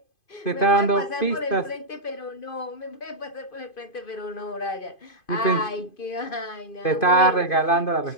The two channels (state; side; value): late; right; 2.5 ms